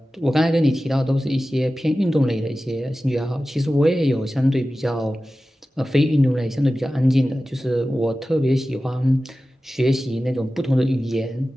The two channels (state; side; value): normal; both; correlation 0.95